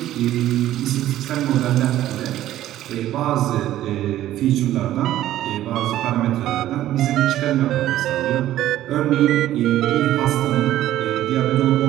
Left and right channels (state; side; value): quieter; left; 13.4 dB